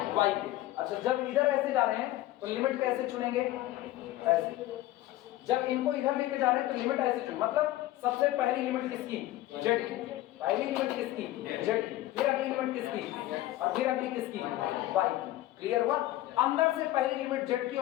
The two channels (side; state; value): right; quieter; 15.7 dB